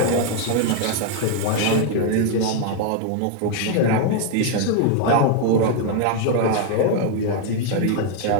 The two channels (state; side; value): different; both; correlation 0.00